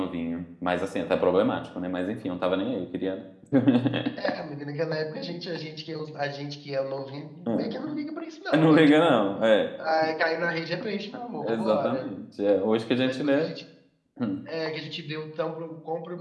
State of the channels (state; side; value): identical; both; correlation 1.00